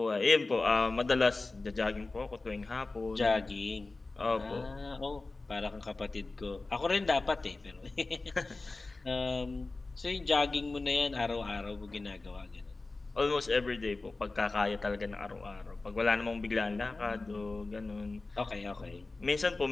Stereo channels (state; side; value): quieter; right; 3.4 dB